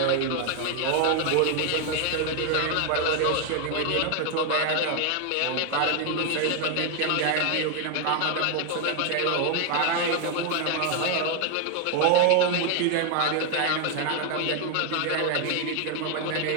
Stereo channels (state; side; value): different; both; correlation 0.01